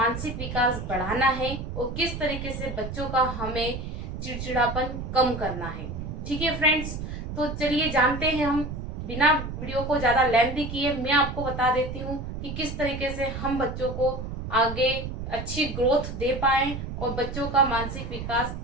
विकास बढ़ाना है और किस तरीके से बच्चों का हमें चिड़चिड़ापन कम करना है। ठीक है फ्रेंड्स, तो चलिए जानते हैं हम। बिना वीडियो को ज्यादा लेंथी किए मैं आपको बता देती हूँ कि किस तरीके से हम बच्चों को आगे अच्छी ग्रोथ दे पाए और बच्चों का मानसिक विकास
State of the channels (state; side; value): noise; right; rumble, 6 dB below the sound